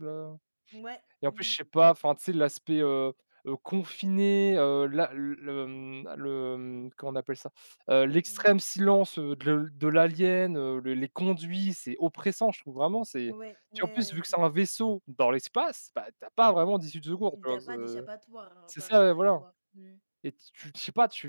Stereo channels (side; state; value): both; inverted; correlation -1.00